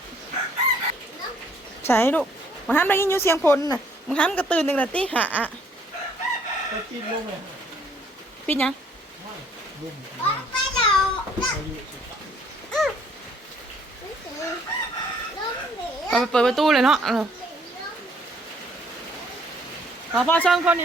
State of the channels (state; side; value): normal; both; correlation 0.63